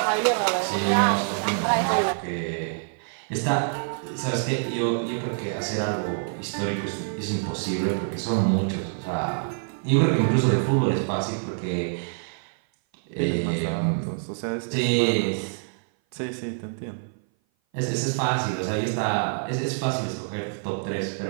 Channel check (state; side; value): silent; left; 57 dB below the other